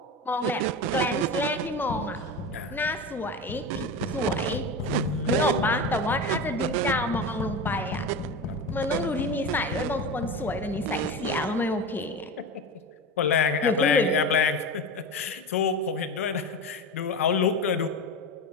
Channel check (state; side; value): normal; both; correlation 0.25